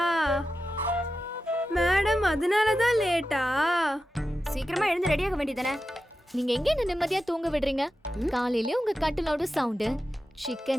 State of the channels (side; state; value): both; normal; correlation 0.91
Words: madam? அதனால தான் லேட்டா? சீக்கிரமா எழுந்து ரெடி ஆக வேண்டியதானே? நீங்க எங்க என்ன நிம்மதியா தூங்க விடுறீங்க? காலையில உங்க கட்டிலோட சவுண்டு,